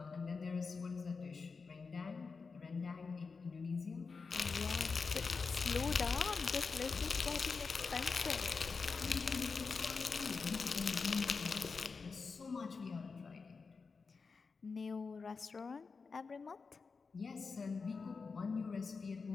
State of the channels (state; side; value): quieter; right; 4.8 dB